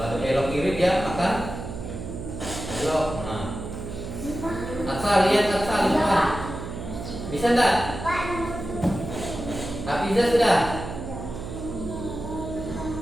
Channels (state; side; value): noise; right; hum, 8 dB below the sound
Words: ada belok kiri dia akan belok. Nah, asal lihat depan. Bisa enggak? Hafiza sudah?